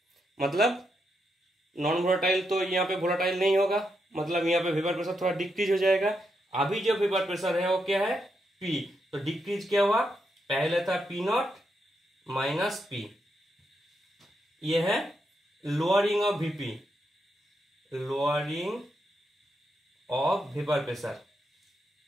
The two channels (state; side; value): normal; both; correlation 0.82